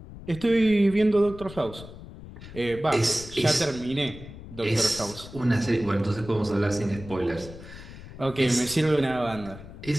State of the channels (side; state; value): left; noise; rumble, 15 dB below the sound